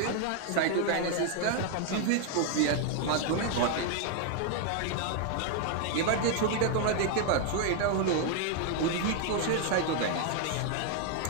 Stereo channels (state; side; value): different; both; correlation 0.00